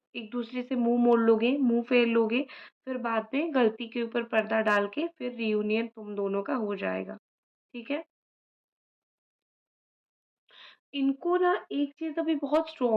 एक-दूसरे से मुँह मोड़ लोगे, मुँह फेर लोगे, फिर बाद में गलती के ऊपर पर्दा डाल के फिर रियूनियन तुम दोनों का हो जाएगा। ठीक है? इनको ना एक चीज़ अभी बहुत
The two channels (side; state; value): both; identical; correlation 1.00